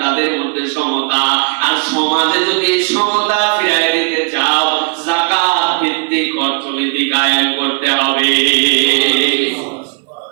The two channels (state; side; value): quieter; left; 36.5 dB